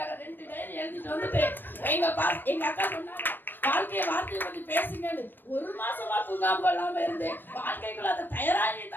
2 டைரி எழுதிட்டு வந்துட்டு எங்க அக்கா சொன்னாங்க வாழ்க்கையை வார்த்தையை பத்தி பேசுங்கன்னு. 1 மாசமா தூங்காம இல்லாம இருந்து வாழ்க்கைக்குள்ள அதை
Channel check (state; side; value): late; right; 0.094 ms